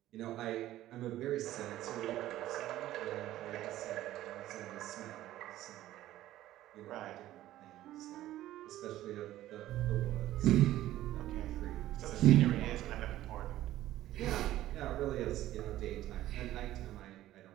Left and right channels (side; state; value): left; quieter; 14.2 dB